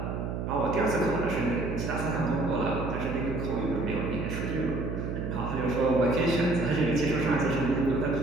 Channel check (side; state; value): right; noise; hum, 3 dB below the sound